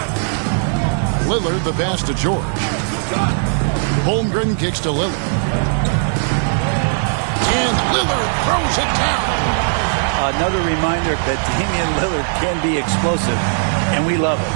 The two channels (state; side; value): silent; left; digital silence